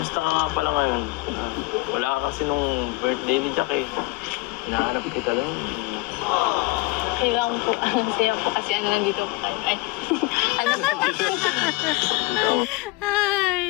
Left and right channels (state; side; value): quieter; right; 21.6 dB